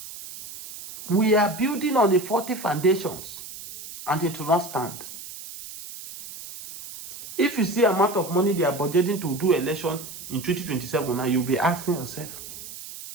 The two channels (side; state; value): right; noise; hiss, 13 dB below the sound